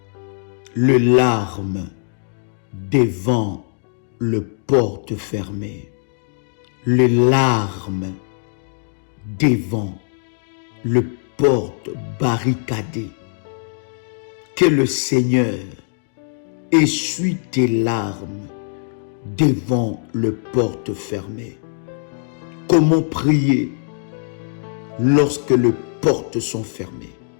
Le larme devant le porte fermé. Le larme devant le porte barricadé. Que le Seigneur essuie tes larmes devant le porte fermé. Comment prier lorsque les portes sont fermées?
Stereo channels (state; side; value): silent; right; digital silence